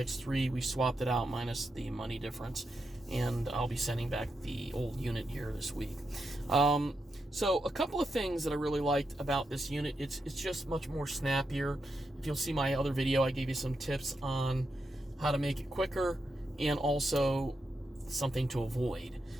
We swapped it out minus the money difference, and I'll be sending back the old unit here this week. So a couple of things that I really liked about this unit, it's just much more snappier. If you'll see my other video, I gave you some tips on how to make it quicker and also something to avoid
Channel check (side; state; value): both; normal; correlation 0.85